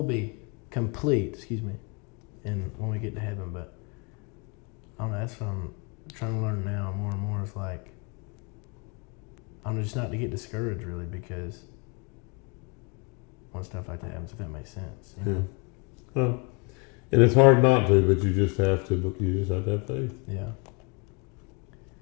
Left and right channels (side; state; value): right; quieter; 32.5 dB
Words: be complete, and when we get to heaven, but I don't know, that's what I'm trying to learn now more and more. It's I'm just not to get discouraged really, because when stuff like that happens, if that makes sense. Yeah. Well, and it's hard not to, but you just have to have faith. Yeah.